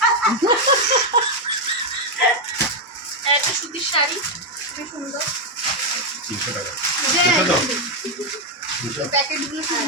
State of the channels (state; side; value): normal; both; correlation 0.03